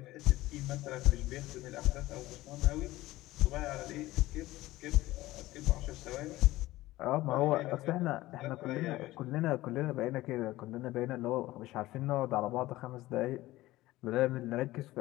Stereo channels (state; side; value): quieter; right; 17.4 dB